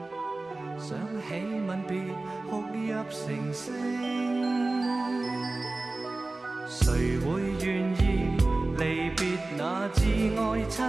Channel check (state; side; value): quieter; left; 3.1 dB